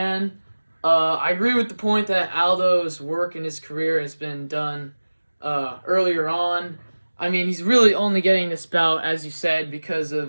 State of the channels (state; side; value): inverted; both; correlation -1.00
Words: I agree with the point that Aldo's work in his career has been done earlier on. I mean, he's really only getting this bout, as you said, because